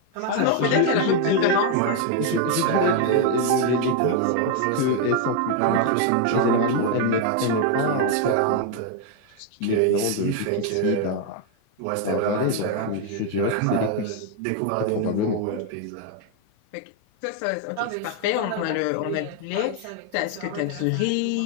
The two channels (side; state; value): both; different; correlation 0.01